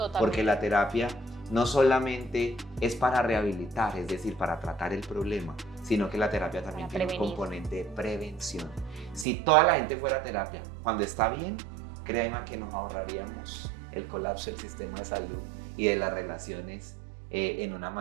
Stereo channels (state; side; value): drops out; left; at 9.2 s